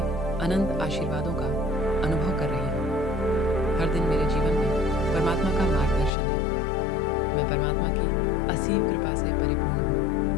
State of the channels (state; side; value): drops out; right; at 6.1 s